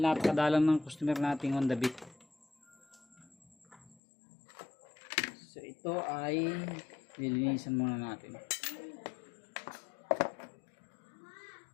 ng customer nating Honda Beat. So ito ay nilinisan muna natin.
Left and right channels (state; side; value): drops out; right; at 4.0 s